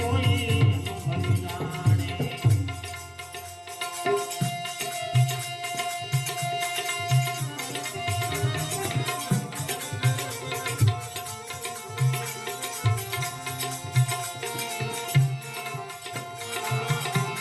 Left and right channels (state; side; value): identical; both; correlation 1.00